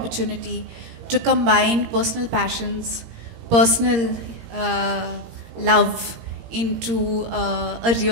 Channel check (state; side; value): late; left; 17 ms